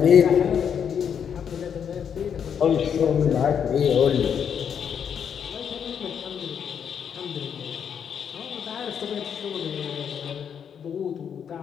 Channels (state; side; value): quieter; right; 7.8 dB